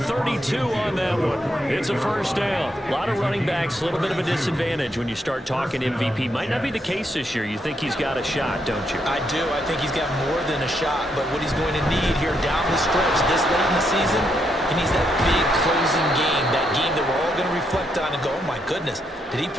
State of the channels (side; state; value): both; normal; correlation 0.78